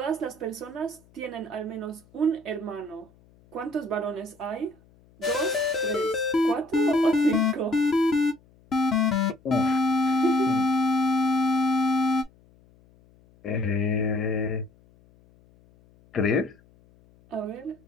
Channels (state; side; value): noise; left; hum, 29 dB below the sound